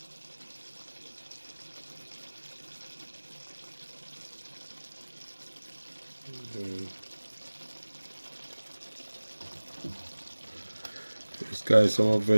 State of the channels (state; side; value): inverted; both; correlation -1.00